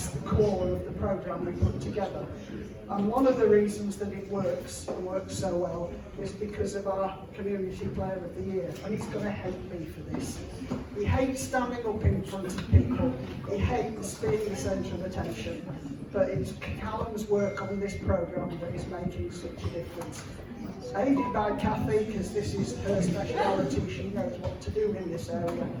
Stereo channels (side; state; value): both; identical; correlation 1.00